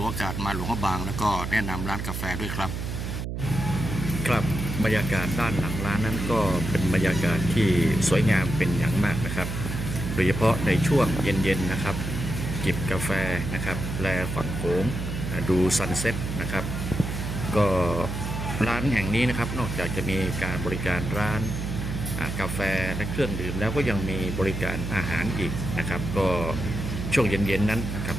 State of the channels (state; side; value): noise; right; hum, 4 dB below the sound